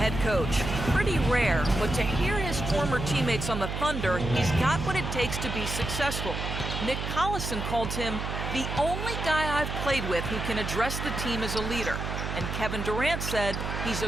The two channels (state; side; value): noise; right; hum, 4 dB below the sound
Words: coach. Pretty rare, but to hear his former teammates on the Thunder, he's got what it takes to be successful. Nick Collison called him the only guy I've played with who can address the team as a leader. And Kevin Durant said he's a